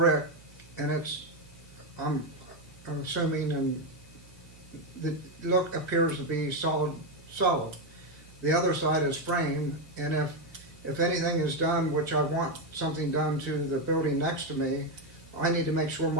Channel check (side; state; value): both; normal; correlation 0.07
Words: and I'm assuming, and the look appears to be solid. The other side is frame, and if anything is done, which I want something done to the building next to me, I need to make sure